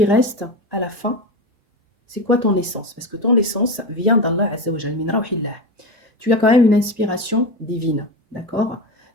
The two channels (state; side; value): normal; both; correlation 0.20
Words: reste à la fin? C'est quoi ton essence? Parce que ton essence vient d'Allah Azza wa Jal, min rawhillah. Tu as quand même une inspiration divine, d'accord?